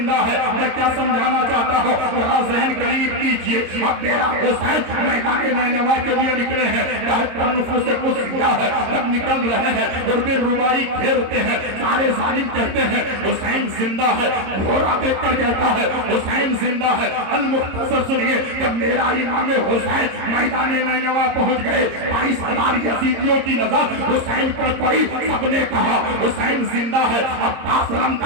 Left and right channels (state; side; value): late; left; 26 ms